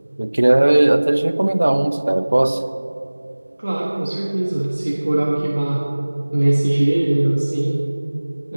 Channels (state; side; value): inverted; both; correlation -1.00